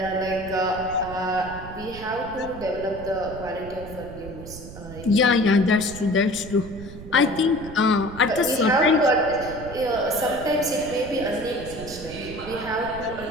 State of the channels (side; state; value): right; noise; rumble, 13 dB below the sound